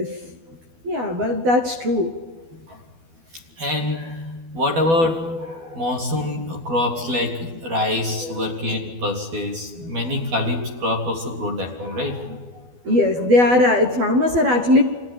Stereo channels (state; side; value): late; left; 12 ms